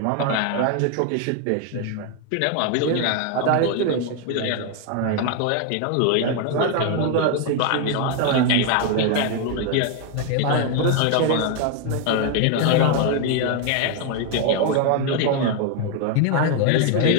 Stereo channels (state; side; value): different; both; correlation 0.01